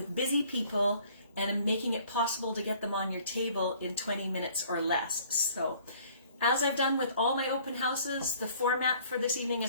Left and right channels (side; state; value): both; inverted; correlation -0.56